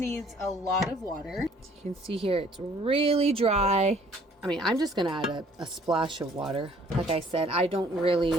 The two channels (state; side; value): normal; both; correlation 0.58